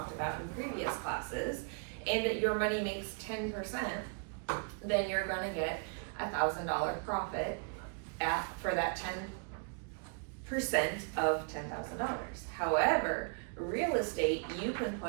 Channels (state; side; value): quieter; left; 39.4 dB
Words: about in previous classes, and your money makes 10%, then you're gonna get $1,000 profit for that 10% of $10,000. However, real estate, you can